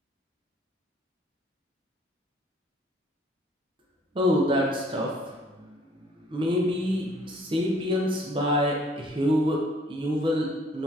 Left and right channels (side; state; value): both; normal; correlation 0.59